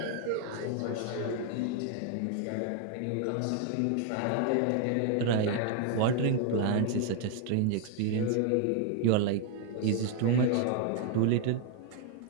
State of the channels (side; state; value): both; different; correlation 0.00